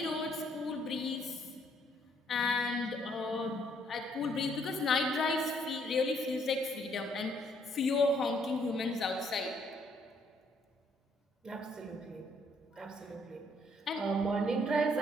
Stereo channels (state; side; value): normal; both; correlation 0.68